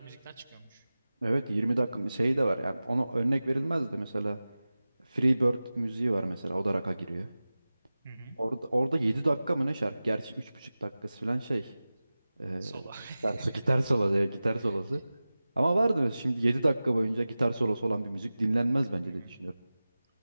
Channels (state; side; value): inverted; both; correlation -0.96